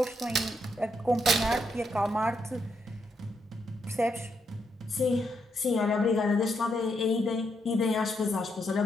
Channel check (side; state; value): both; normal; correlation 0.79